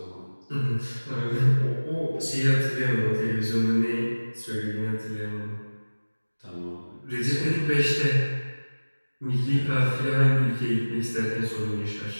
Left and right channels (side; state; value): both; inverted; correlation -1.00